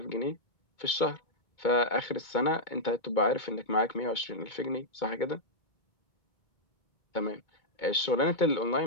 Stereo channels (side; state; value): right; late; 2.2 ms